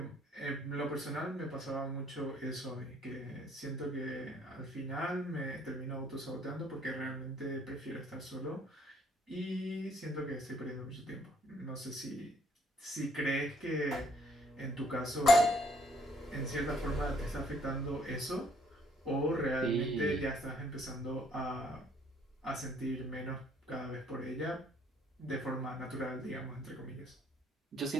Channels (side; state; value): both; normal; correlation 0.64